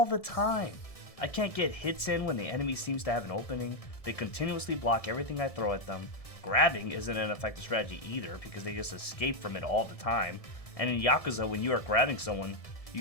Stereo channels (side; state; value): right; late; 1.7 ms